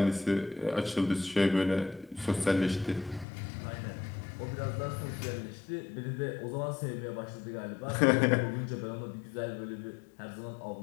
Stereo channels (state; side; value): drops out; right; at 3.2 s